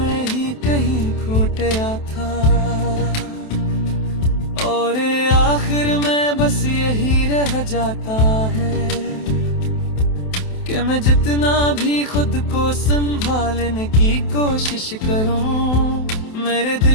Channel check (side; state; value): right; late; 28 ms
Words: ही कहीं खो गया था। और आखिर में बस यही रह जाता है कि मैं जितना भी खुद को संभालने की कोशिश करूं, मेरे